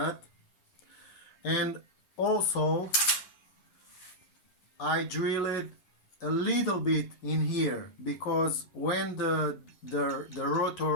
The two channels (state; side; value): late; right; 11 ms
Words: and also I drill it a little bit in here, because when the